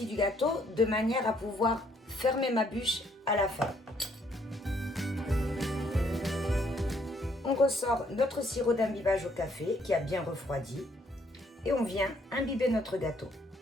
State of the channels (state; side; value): normal; both; correlation 0.68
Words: du gâteau de manière à pouvoir fermer ma bûche à la fin. On ressort notre sirop d'imbibage au café qui a bien refroidi et on vient imbiber notre gâteau.